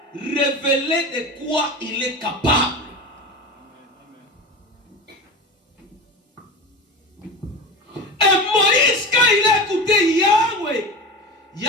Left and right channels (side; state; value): both; normal; correlation 0.28